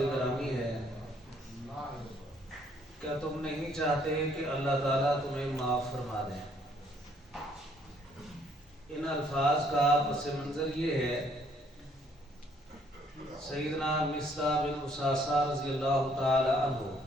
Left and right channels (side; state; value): both; normal; correlation 0.65